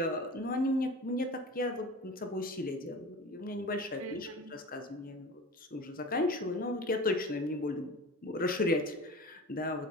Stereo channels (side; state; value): both; normal; correlation 0.35